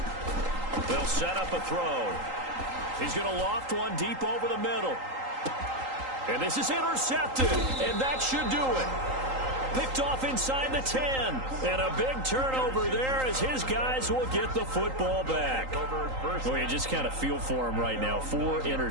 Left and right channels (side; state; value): left; late; 3.8 ms